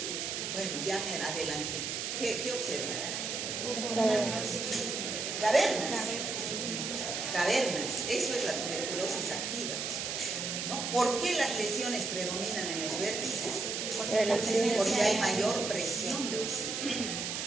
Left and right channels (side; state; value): right; noise; hiss, 3 dB below the sound